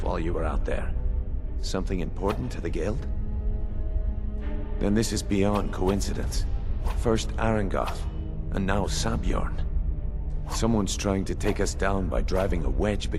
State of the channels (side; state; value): both; identical; correlation 1.00